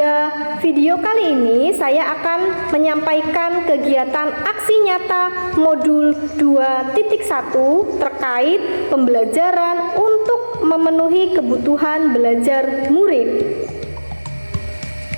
video kali ini saya akan menyampaikan kegiatan aksi nyata modul 2.1 terkait pembelajaran untuk memenuhi kebutuhan belajar murid.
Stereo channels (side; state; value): both; inverted; correlation -1.00